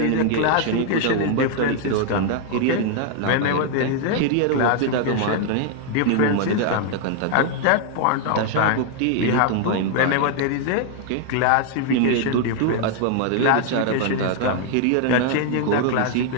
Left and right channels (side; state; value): both; different; correlation 0.00